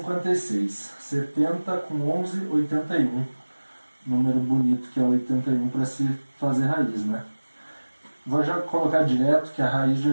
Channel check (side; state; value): both; inverted; correlation -1.00